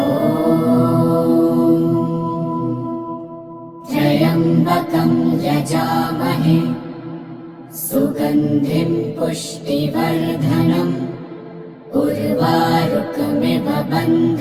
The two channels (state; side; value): identical; both; correlation 1.00